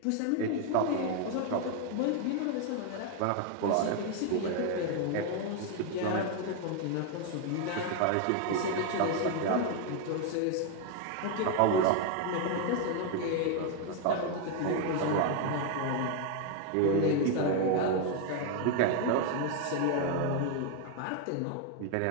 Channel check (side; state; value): both; different; correlation 0.01